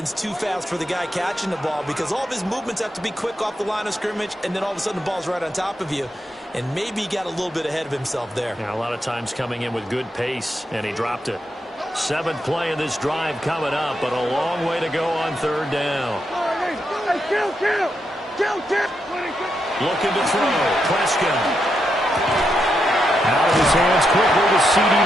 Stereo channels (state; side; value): normal; both; correlation 0.83